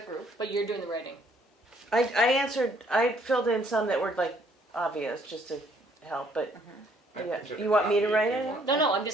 group. But you're doing the writing. I filled in some that were like obvious, just to help, but yeah, you want me to write it? No, I'm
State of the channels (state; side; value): normal; both; correlation 0.64